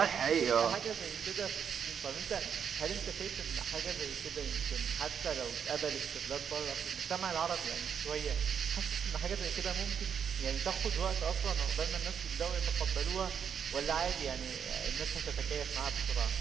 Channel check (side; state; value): left; quieter; 7.6 dB